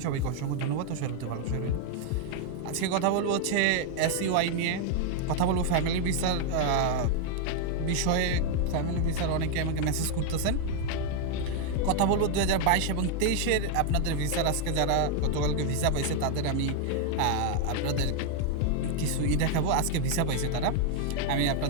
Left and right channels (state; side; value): different; both; correlation 0.00